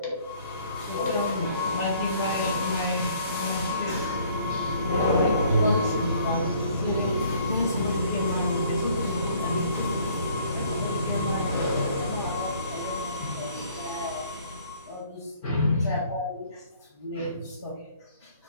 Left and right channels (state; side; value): inverted; both; correlation -0.59